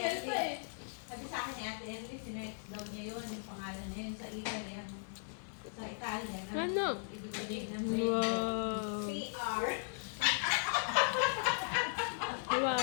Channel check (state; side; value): silent; right; digital silence